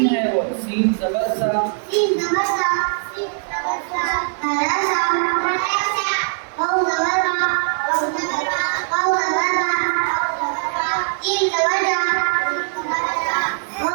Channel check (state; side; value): silent; left; digital silence